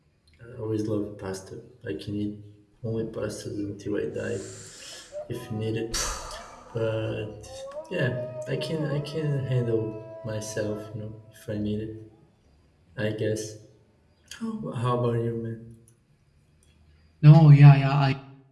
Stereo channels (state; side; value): identical; both; correlation 1.00